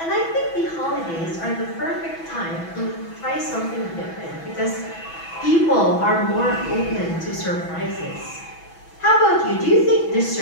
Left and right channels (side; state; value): right; late; 6.1 ms